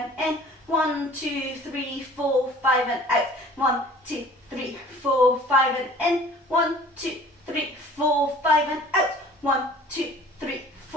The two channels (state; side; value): normal; both; correlation 0.49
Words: in. 1, 2, 3, 4, 5 and out. 1, 2, 3, 4, 5 and in. 1, 2, 3, 4, 5 and out. 1, 2, 3,